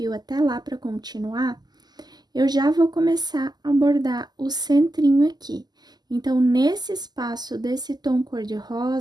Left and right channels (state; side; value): late; left; 0.20 ms